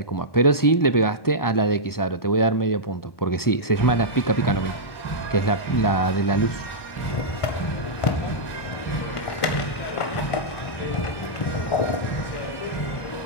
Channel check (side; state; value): right; late; 1.1 ms